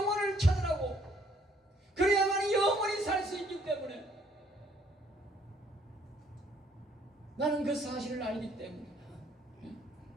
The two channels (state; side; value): normal; both; correlation 0.64